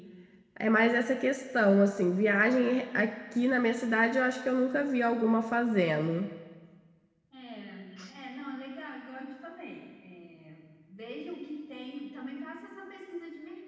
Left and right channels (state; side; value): identical; both; correlation 1.00